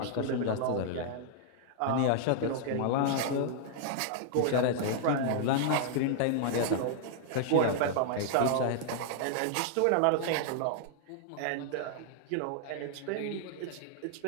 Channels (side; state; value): both; different; correlation -0.01